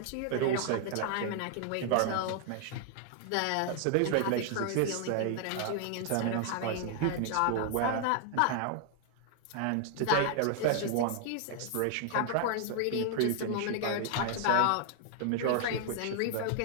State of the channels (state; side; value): different; both; correlation 0.00